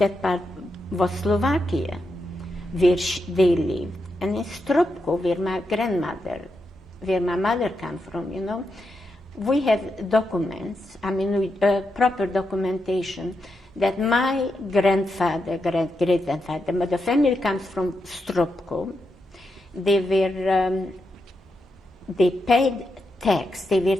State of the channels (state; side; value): normal; both; correlation 0.85